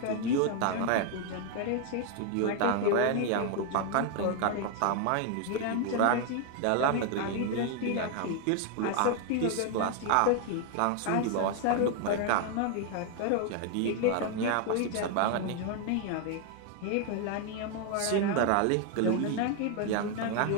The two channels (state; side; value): different; both; correlation 0.00